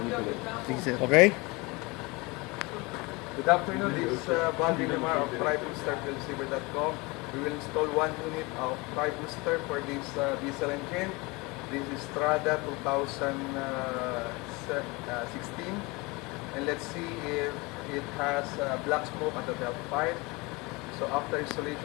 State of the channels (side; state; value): right; quieter; 25.2 dB